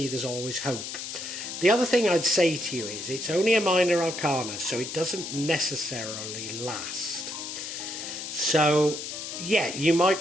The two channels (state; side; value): noise; left; hiss, 7 dB below the sound